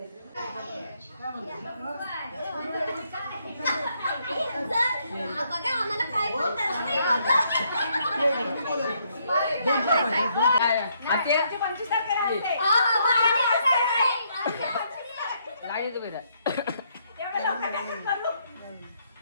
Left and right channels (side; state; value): both; inverted; correlation -0.72